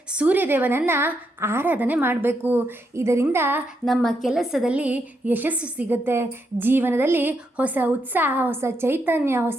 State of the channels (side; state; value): both; normal; correlation 0.80